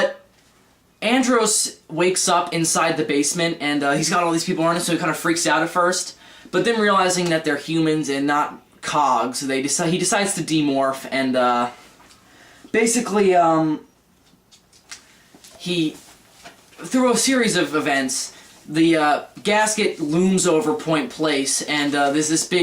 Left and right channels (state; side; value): identical; both; correlation 1.00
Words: Andros wakes up inside the basement, and he's got all these people around him, so he kind of freaks out at first. But then realizing that they're humans and not cogs, he decides to demorph, and basically, through a series of events, the gasket looms over Point Place, and there's this